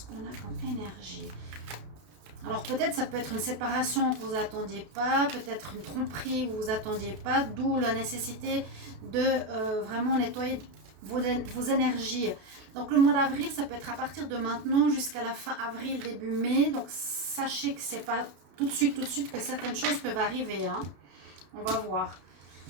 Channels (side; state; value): left; late; 33 ms